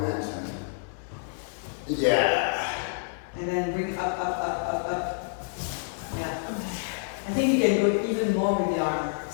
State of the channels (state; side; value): silent; right; 59 dB below the other